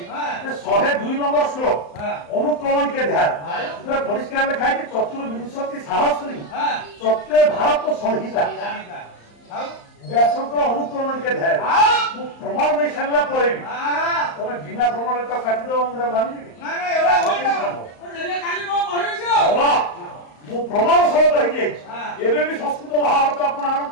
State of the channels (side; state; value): right; late; 35 ms